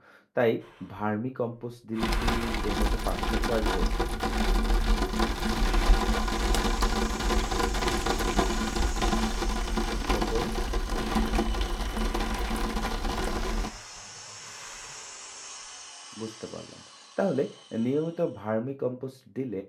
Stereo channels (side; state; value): both; identical; correlation 1.00